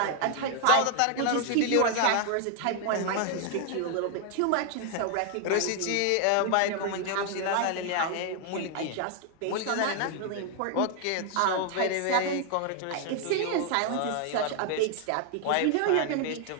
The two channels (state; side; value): different; both; correlation 0.00